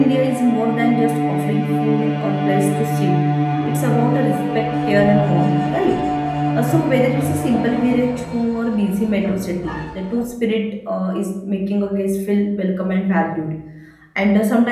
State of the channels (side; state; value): both; identical; correlation 1.00